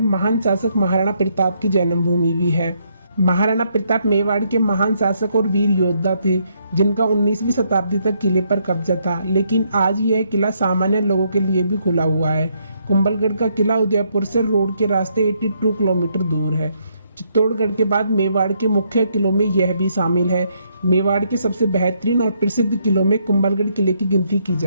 महान शासक महाराणा प्रताप की जन्मभूमि भी है। महाराणा प्रताप मेवाड़ के महान शासक और वीर योद्धा थे, जिनका 19वीं शताब्दी तक किले पर कब्जा था, लेकिन आज यह किला सामान्य लोगों के लिए भी खुला हुआ है। कुंभलगढ़ का किला उदयपुर से रोड के रास्ते 82 किलोमीटर दूर है। चित्तौड़गढ़ के बाद मेवाड़ के मुख्य किलों में यह भी शामिल है। मेवाड़ के सबसे बेहतरीन और प्रसिद्ध किलों में कुंभलगढ़ किले की गिनती की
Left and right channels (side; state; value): both; inverted; correlation -0.73